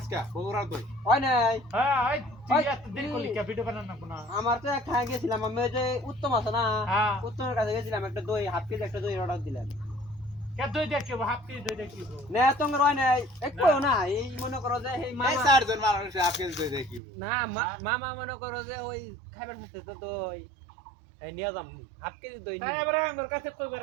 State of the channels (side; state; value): left; drops out; at 17.0 s